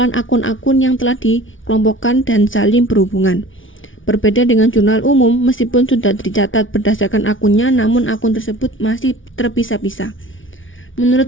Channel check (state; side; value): late; right; 0.57 ms